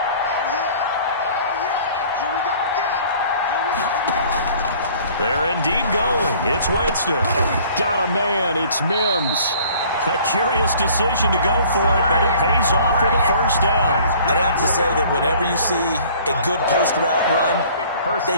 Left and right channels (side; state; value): both; inverted; correlation -0.52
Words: They're indeed going. It's Winston. Got a man. It's Mims. A curious decision to go for it, but it pays off with a 1st down. I'd have to say that whenever you see a good post route run,